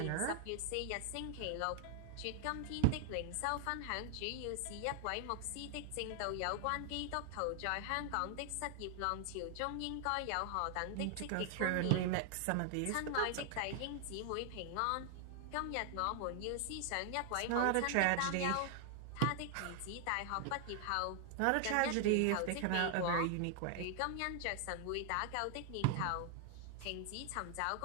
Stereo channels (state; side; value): different; both; correlation 0.00